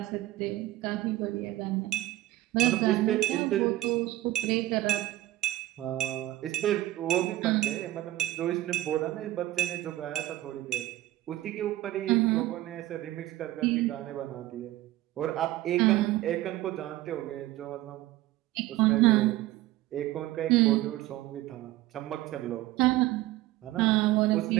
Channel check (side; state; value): left; quieter; 16.2 dB